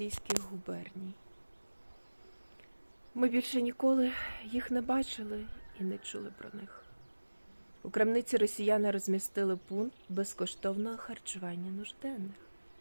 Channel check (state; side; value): inverted; both; correlation -1.00